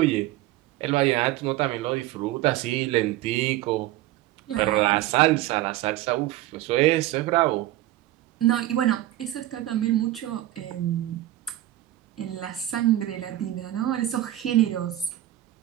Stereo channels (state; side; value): quieter; left; 14.9 dB